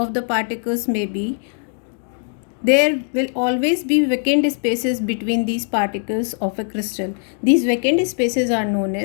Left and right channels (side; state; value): right; silent; 56 dB below the other